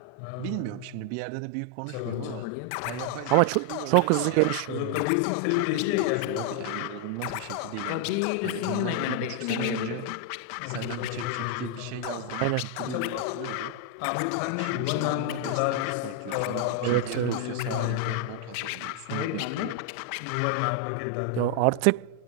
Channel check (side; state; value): both; different; correlation 0.00